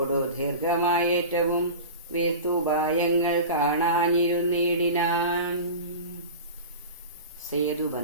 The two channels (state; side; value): inverted; both; correlation -0.31